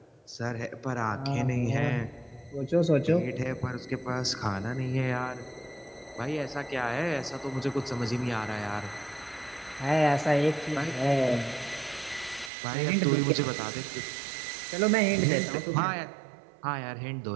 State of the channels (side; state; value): left; drops out; at 12.5 s